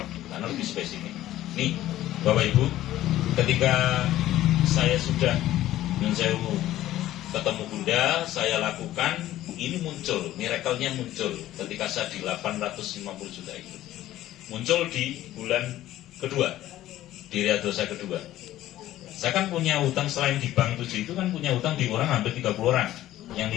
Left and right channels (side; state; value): right; quieter; 14.2 dB